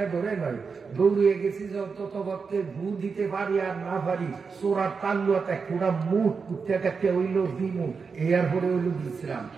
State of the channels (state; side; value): quieter; left; 5.2 dB